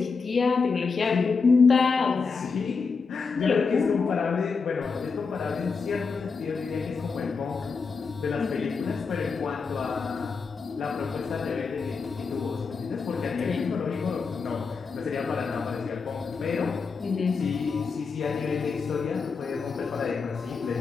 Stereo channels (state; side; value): quieter; right; 5.0 dB